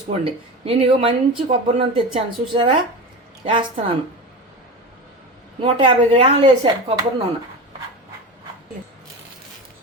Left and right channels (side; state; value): both; normal; correlation 0.26